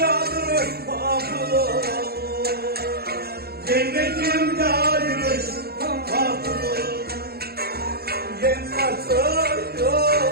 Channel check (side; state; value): left; late; 0.46 ms